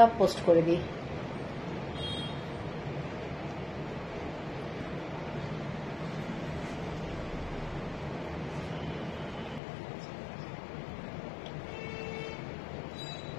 পোস্ট করে দিই।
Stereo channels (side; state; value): right; drops out; at 9.6 s